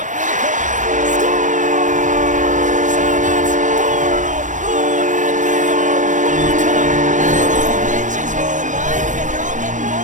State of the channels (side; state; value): left; late; 0.36 ms